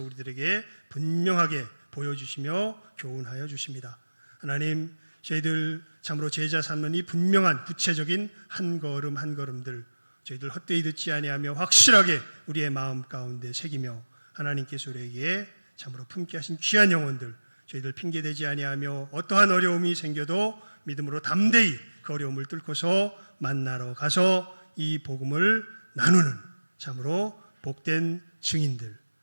우리들에게 분명하게 보여주시며 교훈하여 주십니다. 하나님, 저희들 참으로 제자 삼는 이 분명한 구체적인 한 걸음 한 걸음들 저희들 헛되이 듣지 아니하며 확실하게 우리의 마음 가운데 새기며 하나님께서 우리에게 참으로 품게 하신 귀한 영혼들 저희들 핑계대지 아니하며 어떠한 어려움이 생겨도 믿음으로 담대히 그 어려움을 뚫고서 만나러 가서 이 복음을 나누는 참으로 복된 증인들,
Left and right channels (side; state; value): both; inverted; correlation -1.00